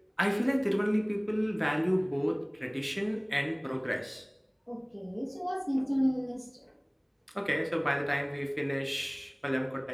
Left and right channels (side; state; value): both; identical; correlation 1.00